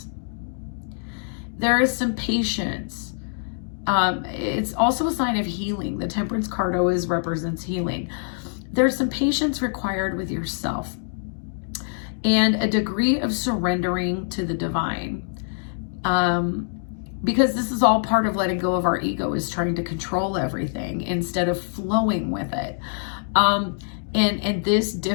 There is some patience. It's also a sign of healing. The Temperance card always represents healing. There's some patience required with yourself and a degree of surrendering to the divine. Because this is all part of letting go of our ego, is trying to control everything instead of flowing with it. And this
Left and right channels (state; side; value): silent; right; digital silence